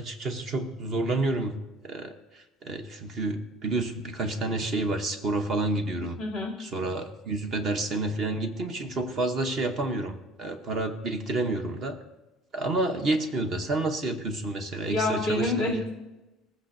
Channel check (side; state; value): both; normal; correlation 0.48